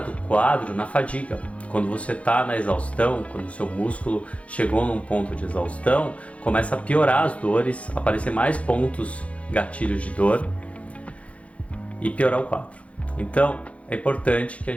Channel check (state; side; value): late; right; 0.064 ms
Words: quadro na fadiga. Quando você está na exaustão, quando o seu músculo chegou num ponto de exaustão, começa a piorar as dores, aparecer mais pontos gatilhos de dor e piorar o quadro. Então é importante que a